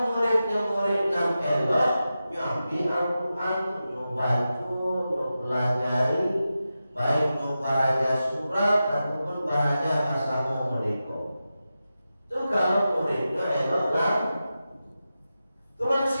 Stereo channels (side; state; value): both; inverted; correlation -0.92